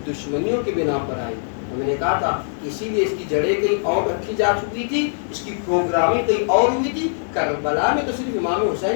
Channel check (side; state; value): right; silent; digital silence